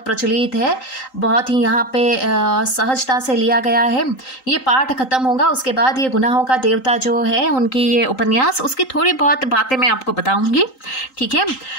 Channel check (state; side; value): late; right; 3.8 ms